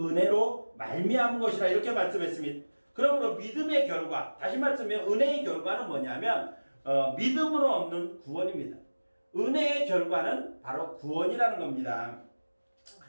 말미암은 것이라 이렇게 말씀했습니다. 그러므로 믿음의 결과, 다시 말씀하면 은혜의 결과는 뭐냐면 믿음으로 얻는 구원입니다. 은혜의 결과는 바로 구원이라는 겁니다.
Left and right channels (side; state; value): both; inverted; correlation -1.00